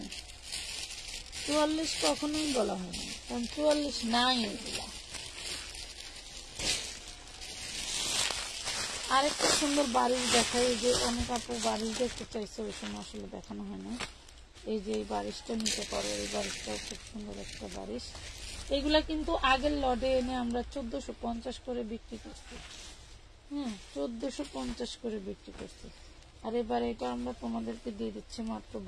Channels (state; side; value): identical; both; correlation 1.00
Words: 44 কখনোই বলা হয় না, কারণ 44 নাই এগুলা। আরেকটা সুন্দর বাড়ির দেখাই, যে অনেক আপু বাড়ি দেখতে চাইছে, ওই সময় আসলে দেখানো হয় না। এই যে এই বারিশটা নিতে পারো, এই বারিশটাও খুব সুন্দর একটা বারিশ। এগুলা কিন্তু আগের লটে এনে আমরা 1450 করে বিক্রি করছি। হ্যাঁ 1450 করে বিক্রি করছি, আর এবার এটা আমরা তোমাদেরকে দিয়ে দিচ্ছি মাত্র